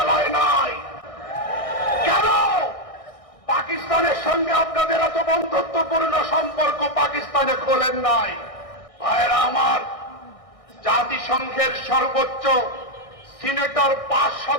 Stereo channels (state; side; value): late; right; 1.6 ms